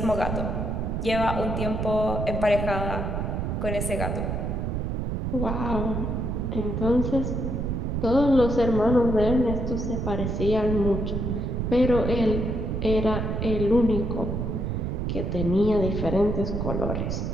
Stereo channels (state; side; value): noise; right; rumble, 1 dB below the sound